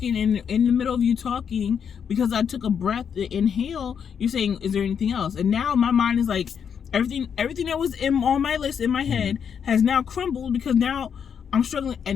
and in the middle of you talking, because I took a breath to inhale, you're saying, "Is there anything else?" And now my mind is like, everything that was on my list in my head has now crumbled, because now I'm struggling.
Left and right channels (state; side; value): quieter; right; 7.4 dB